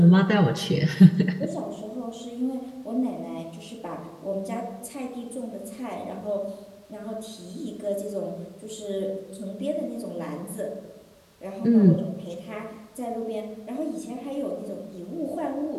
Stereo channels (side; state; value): both; identical; correlation 1.00